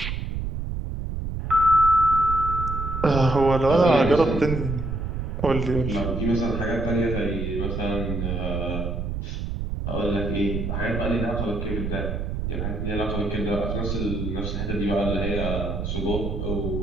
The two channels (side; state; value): right; noise; rumble, 3 dB below the sound